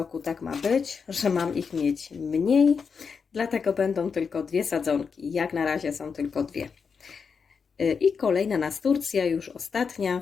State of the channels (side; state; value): right; quieter; 5.8 dB